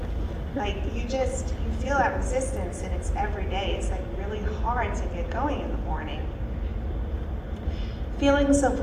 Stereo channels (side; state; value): both; identical; correlation 1.00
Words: Like you feel that resistance, and it's every day. It's like really hard to get going in the morning. Feelings of